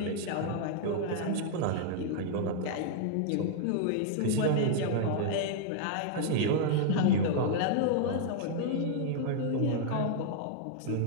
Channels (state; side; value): different; both; correlation -0.01